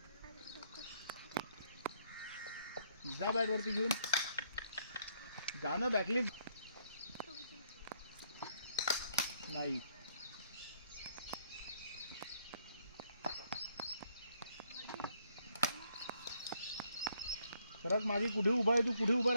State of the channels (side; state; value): both; inverted; correlation -0.69